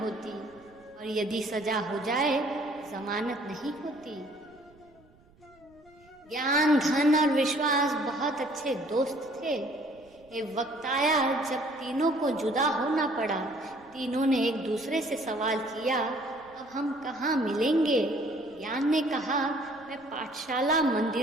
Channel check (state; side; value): noise; right; rumble, 29 dB below the sound